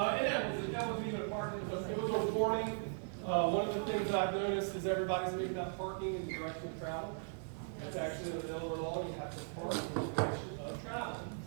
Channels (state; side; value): silent; left; digital silence